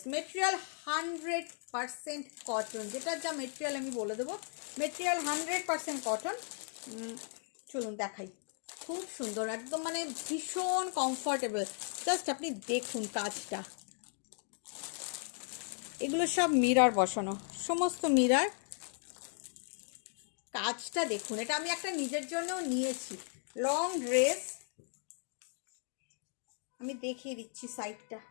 মেটেরিয়াল 100% কটন, যেটার যা মেটেরিয়াল আমি বলে দেবো, মেটেরিয়াল 100% কটন। চলুন দেখাই, খুব সুন্দর একদম, মানে ভীষণ কমফর্টেবল। জাস্ট আপনি দেখুন কাজটা, এগুলো সব মিরর বসানো, সমস্ত মিরর। কাজটা দেখুন, এটা আমি একটা নিজের জন্যও নিয়েছি। লং ড্রেস আমি দেখিয়ে দিচ্ছি সাইডটা।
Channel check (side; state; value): right; silent; 54 dB below the other